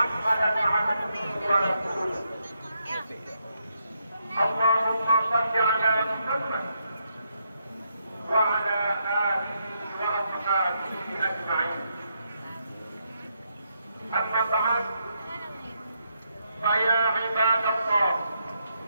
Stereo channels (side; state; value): both; inverted; correlation -0.79